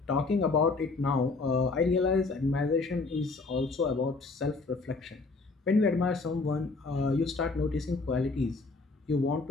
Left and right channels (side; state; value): right; quieter; 3.8 dB